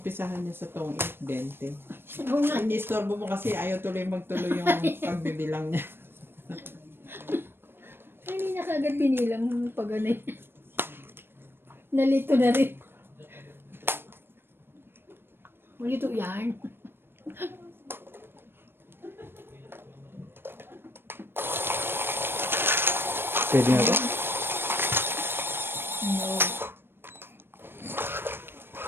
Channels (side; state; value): left; late; 0.10 ms